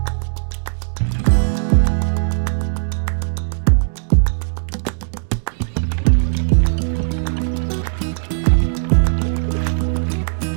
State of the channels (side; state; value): left; silent; digital silence